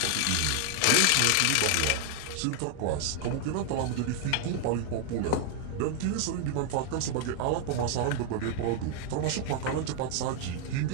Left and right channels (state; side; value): different; both; correlation 0.00